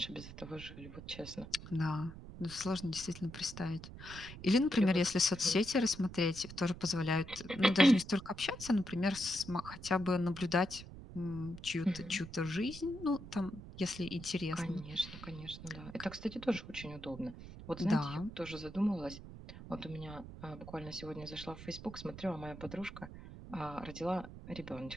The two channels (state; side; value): noise; right; rumble, 13 dB below the sound